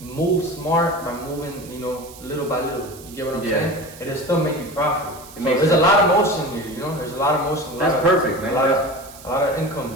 smart by moving, little by little. You get what I'm saying? It'll still make you profit. There's a lot of motion here, There's a lot of motion. That's perfect, man. A lot of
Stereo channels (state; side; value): noise; right; hiss, 19 dB below the sound